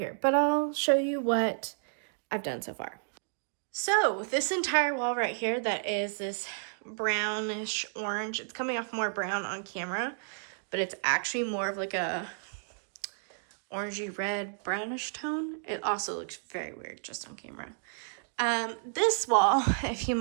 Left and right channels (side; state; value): left; silent; digital silence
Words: but I'll show you what I've done so far. So this entire wall right here that is this brownish orange, it's coming off more brown on camera, but it's actually more of like a orangey red brownish tone. It also looks very weird just on camera. This wall, if you